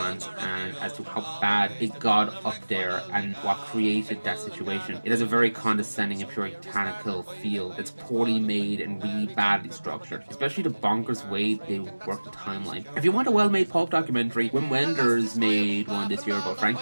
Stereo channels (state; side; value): inverted; both; correlation -1.00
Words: and as to how bad it got up there and what created that situation. It has a very condescending and puritanical feel that's poorly made and really badly structured, especially the bonkers way they work the timeline. If you want a well-made pulp documentary, Wim Wenders made one this year about